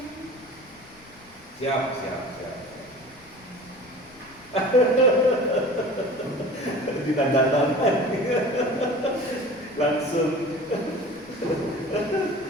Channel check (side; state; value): left; noise; rumble, 26 dB below the sound